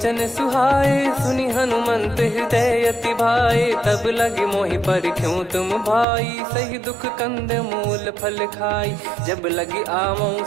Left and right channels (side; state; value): left; drops out; at 6.1 s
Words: सुहाए, सुनि हनुमंत हृदय अति भाए। तब लगे मोहि परख्यूं तुम भाई, सही दुख कंद मूल फल खाई। जब लगी आवऊं